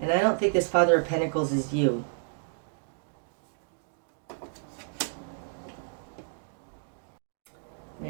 I don't think this Father of Pentacles is you. And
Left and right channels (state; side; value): silent; left; digital silence